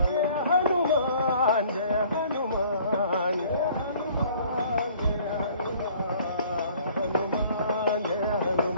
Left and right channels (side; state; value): both; inverted; correlation -0.55